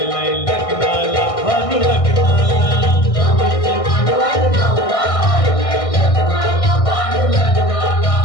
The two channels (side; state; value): right; late; 1.6 ms